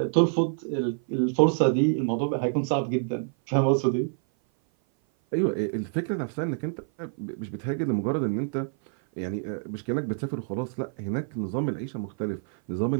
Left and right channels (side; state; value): left; silent; 56 dB below the other